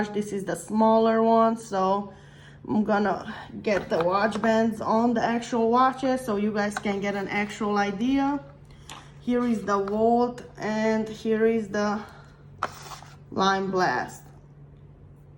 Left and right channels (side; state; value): both; identical; correlation 1.00